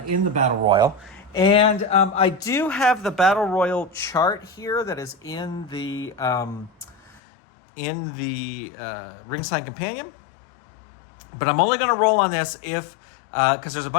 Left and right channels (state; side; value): drops out; right; at 7.2 s